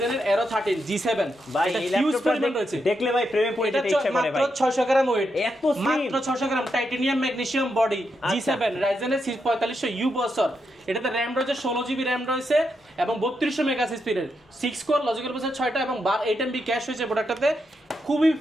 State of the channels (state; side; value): normal; both; correlation 0.83